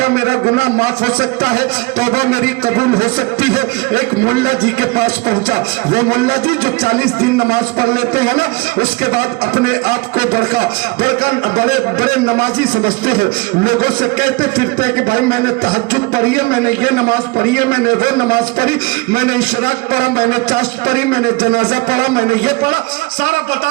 میرا گناہ معاف ہو سکتا ہے, توبہ میری قبول ہو سکتی ہے. ایک ملا جی کے پاس پہنچا. وہ ملا جی جو 40 دن نماز پڑھ لیتے ہیں نا, اس کے بعد اپنے آپ کو بڑے نمازی سمجھتے ہیں. لوگوں سے کہتے پھرتے کہ بھائی میں نے تہجد پڑھی ہے, میں نے یہ نماز پڑھی ہے, میں نے وہ نماز پڑھی, میں نے اشراق پڑھا, میں نے چاشت پڑھی, میں نے جنازہ پڑھا, میں نے یہ پڑھا, سارا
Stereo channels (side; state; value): left; quieter; 24.4 dB